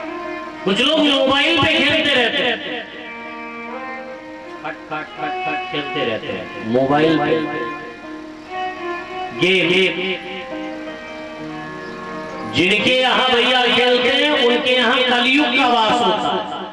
कुछ लोग मोबाइल पे खेलते रहते हैं, खट खट खट खट खेलते रहते हैं मोबाइल पे गेम। जिनके यहाँ भैया खेलते हैं, उनके यहाँ कलयुग का वास होता है।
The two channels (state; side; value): identical; both; correlation 1.00